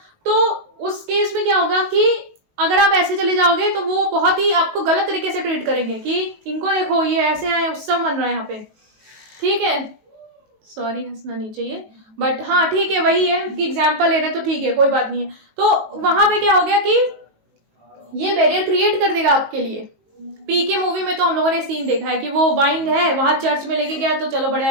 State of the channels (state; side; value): late; left; 18 ms